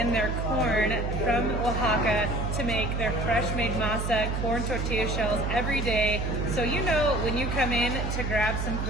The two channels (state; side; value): noise; right; hum, 2 dB below the sound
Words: their corn from Oaxaca to make their fresh made masa corn tortilla shells every day. So you know when you come in to grab some